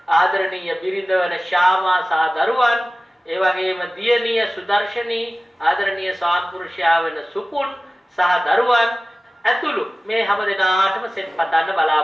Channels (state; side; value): normal; both; correlation 0.97